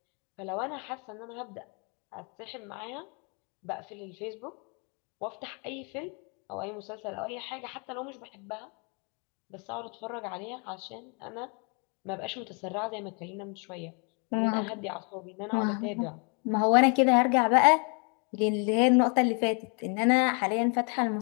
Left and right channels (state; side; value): quieter; right; 36.9 dB